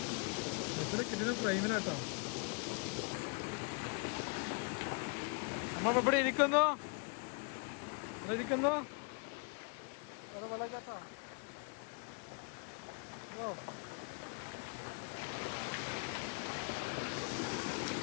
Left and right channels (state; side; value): quieter; right; 36.1 dB